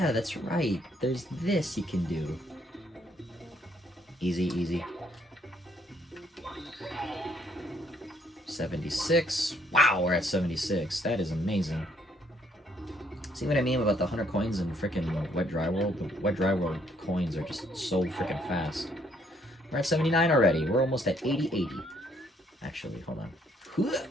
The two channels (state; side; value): normal; both; correlation 0.68